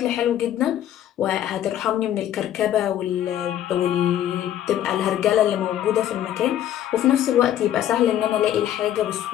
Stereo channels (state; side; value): quieter; right; 11.5 dB